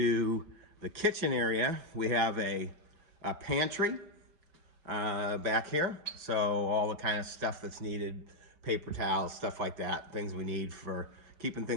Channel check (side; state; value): left; late; 6.0 ms